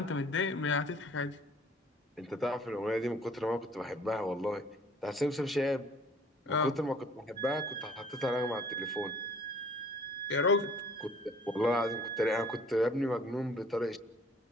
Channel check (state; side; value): normal; both; correlation 0.54